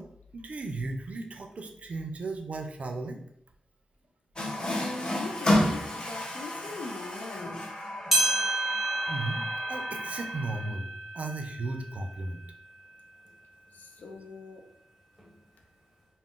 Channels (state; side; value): normal; both; correlation 0.77